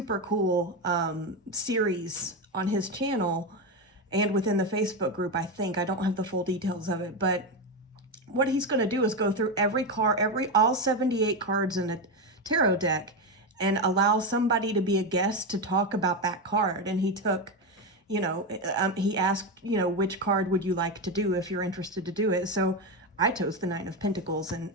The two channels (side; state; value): both; normal; correlation 0.13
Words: cool series on his channel and within the Facebook group, I think. I don't have the full details of it, but what he's going to do is go through all 78 cards in a tarot deck and allow somebody to be a guest to talk about that card. And he took, he asked, which card would you like to do if you're interested to do it? So I chose the 9 of Pentacles,